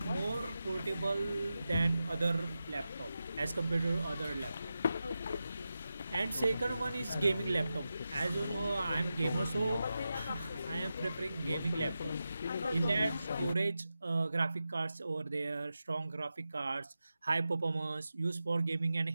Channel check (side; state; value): both; inverted; correlation -0.91